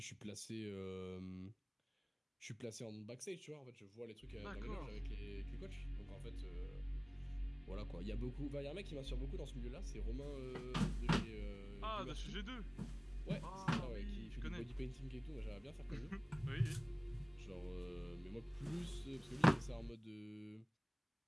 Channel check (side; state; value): both; identical; correlation 1.00